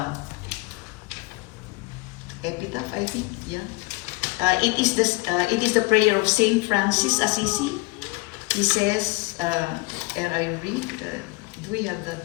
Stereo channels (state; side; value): quieter; right; 24.9 dB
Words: epitaph, I think, yeah. It is the prayer of Saint Francis Assisi. He says, and I read, do we have